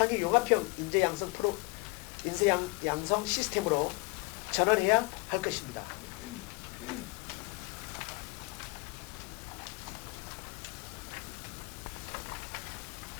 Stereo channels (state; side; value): quieter; right; 26.0 dB